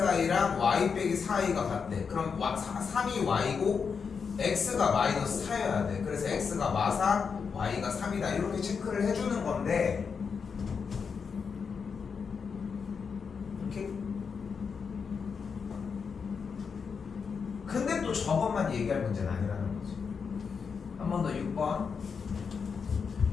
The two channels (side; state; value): right; quieter; 5.9 dB